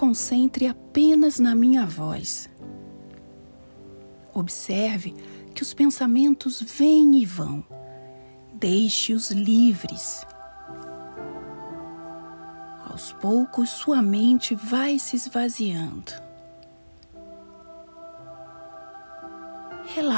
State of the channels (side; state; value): both; inverted; correlation -1.00